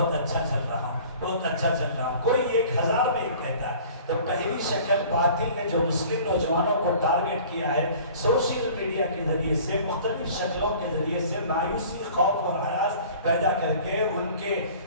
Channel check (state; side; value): inverted; both; correlation -0.47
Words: اچھا چل رہا ہوں, بہت اچھا چل رہا ہوں. کوئی 1000 میں ایک کہتا ہے. تو پہلی شکل باطل نے جو مسلم نوجوانوں کو ٹارگٹ کیا ہے سوشل میڈیا کے ذریعے سے, مختلف شکلوں کے ذریعے سے مایوسی, خوف اور ہراس پیدا کر کے ان کے